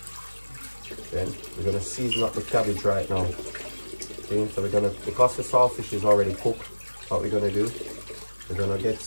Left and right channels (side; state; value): both; inverted; correlation -1.00